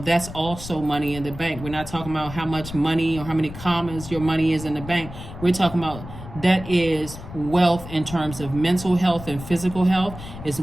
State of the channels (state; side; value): noise; left; rumble, 12 dB below the sound